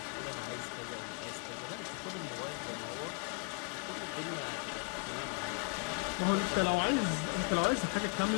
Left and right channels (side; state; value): right; quieter; 34.7 dB